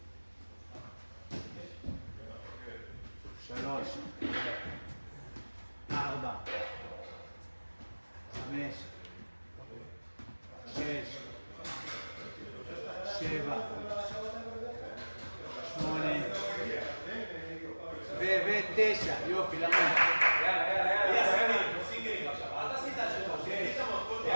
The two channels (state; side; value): inverted; both; correlation -1.00